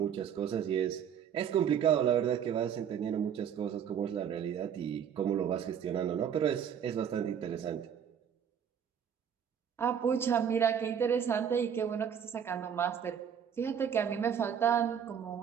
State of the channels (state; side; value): quieter; left; 8.3 dB